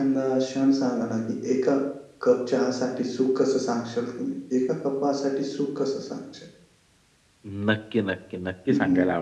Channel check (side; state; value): both; identical; correlation 1.00